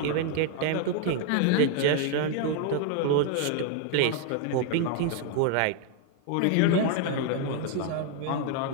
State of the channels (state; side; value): different; both; correlation 0.00